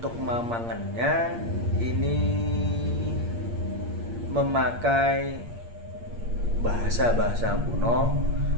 mamangannya ini memakai bahasa-bahasa kuno,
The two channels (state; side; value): late; left; 8.6 ms